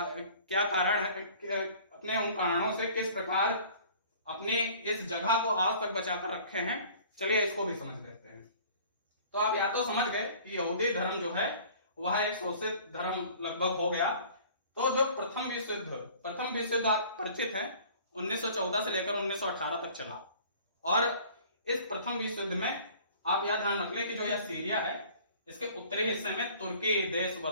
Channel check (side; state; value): both; inverted; correlation -0.49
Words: कारण है, अपने उन कारणों से किस प्रकार अपनी इस जगह को आज तक बचाकर रखे हैं, चलिए इसको भी समझ लेते हैं। तो आप या तो समझ गए कि यहूदी धर्म जो है वह एक शोषित धर्म लगभग हो गया। तो जो प्रथम विश्व युद्ध आप परिचित हैं, 1914 से लेकर 1918 तक चला। और इस प्रथम विश्व युद्ध में आप यह ध्यान रख लें कि जो यह सीरिया है इसके उत्तरी हिस्से में तुर्की देश